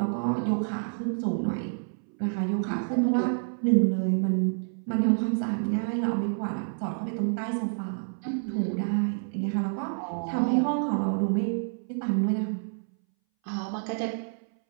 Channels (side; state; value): left; silent; 59 dB below the other